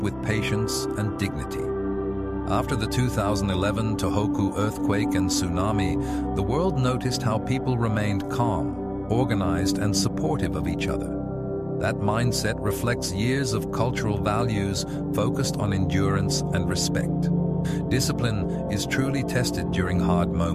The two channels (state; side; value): noise; left; rumble, 22 dB below the sound